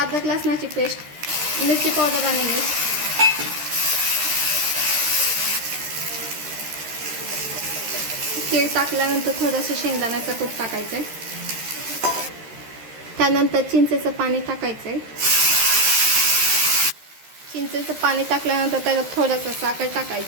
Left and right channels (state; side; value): late; left; 13 ms